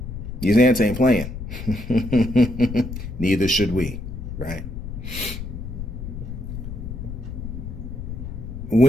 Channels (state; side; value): noise; left; rumble, 7 dB below the sound